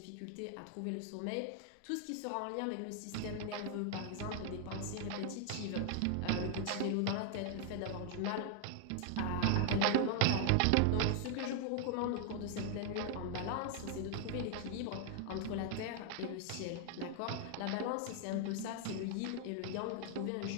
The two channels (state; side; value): different; both; correlation 0.00